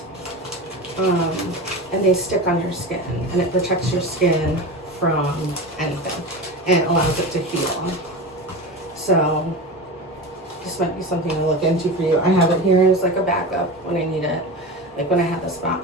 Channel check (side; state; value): both; normal; correlation 0.28